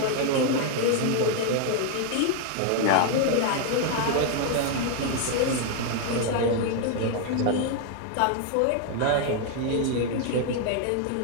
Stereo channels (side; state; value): both; different; correlation 0.00